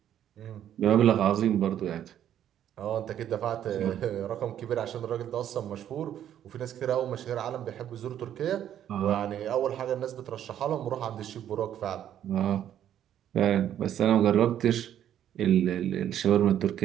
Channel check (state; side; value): quieter; left; 10.6 dB